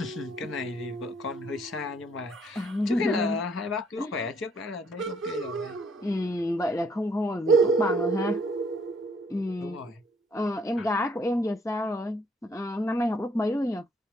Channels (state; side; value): normal; both; correlation 0.65